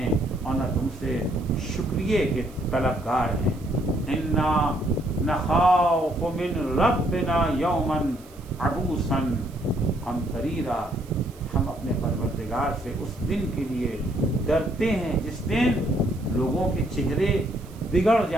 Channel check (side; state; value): right; noise; hiss, 25 dB below the sound